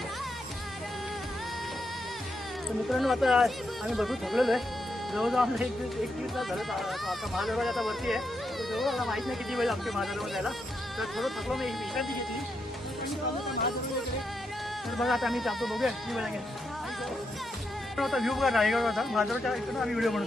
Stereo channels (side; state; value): both; normal; correlation 0.82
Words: तर मित्रांनो, आता आम्ही भरपूर थकलेलो आहे. जवळजवळ आम्हाला एक दीड तास झालं. आता महादरवाजा आता वरती आहे. जवळ मला माहीत नाही किती वेळ लागते महादरवाजा जायला. तर थोडं थकलो, मी विश्रांती घेतली. तर बघा आता आम्ही जातो, बघूया किती वेळ लागेल. आता व्ह्यू बघा रायगडवरचा, महादरवाजा इकडून आम्ही व्हिडिओ